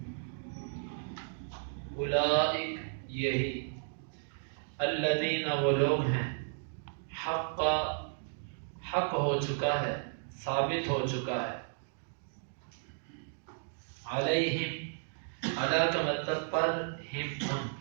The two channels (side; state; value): left; silent; digital silence